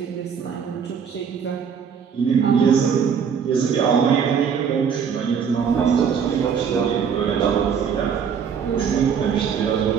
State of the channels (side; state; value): left; quieter; 7.0 dB